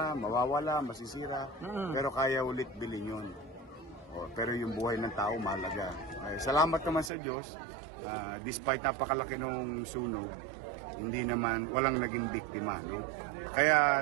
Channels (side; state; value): left; drops out; at 7.1 s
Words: mawawala, masisira, pero kaya ulit bilhin yun. Pero yung buhay ng tao mahalaga. Salamat naman sa Diyos, despite napakalaki ng sunog, hindi naman, walang naging biktima. No? Kaya